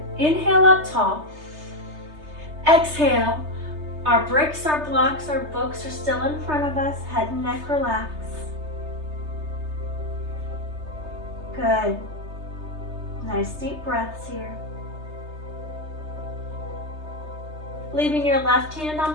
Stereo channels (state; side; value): late; left; 3.3 ms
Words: Inhale up tall. Exhale. Our bricks, our blocks, our books are still in front of us. Head and neck relax. Good. Nice deep breaths here. Leaving your left hand on